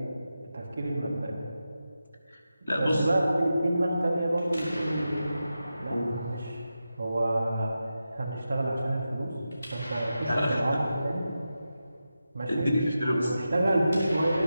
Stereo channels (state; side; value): inverted; both; correlation -0.91